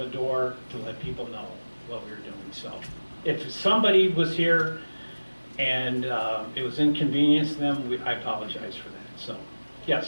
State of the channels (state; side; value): inverted; both; correlation -1.00